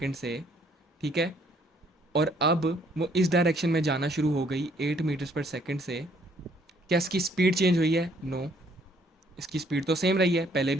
से, ठीक है, और अब वो इस डायरेक्शन में जाना शुरू हो गई 8 मीटर्स पर सेकंड से। क्या इसकी स्पीड चेंज हुई है? नो, इसकी स्पीड तो सेम रही है, पहले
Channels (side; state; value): both; normal; correlation 0.65